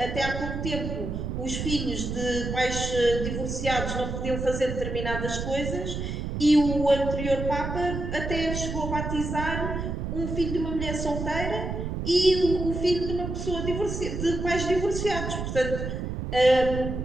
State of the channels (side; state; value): right; noise; rumble, 4 dB below the sound